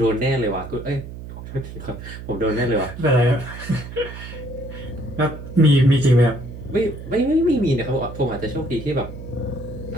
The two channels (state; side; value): noise; right; hum, 11 dB below the sound